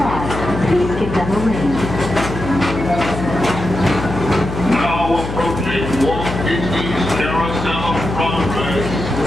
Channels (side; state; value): left; noise; hum, 7 dB below the sound